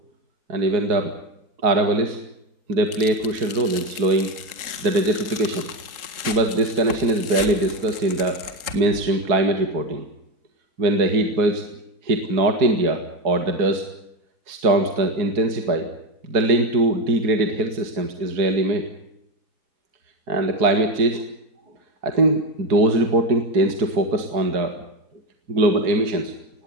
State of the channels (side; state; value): left; late; 3.8 ms